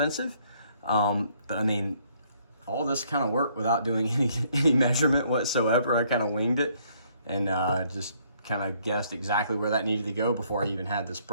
But I mean, all this kind of worked without doing any measurement whatsoever. I kind of winged it and just kind of guessed exactly where that needed to go before I even had this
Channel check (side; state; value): both; inverted; correlation -0.66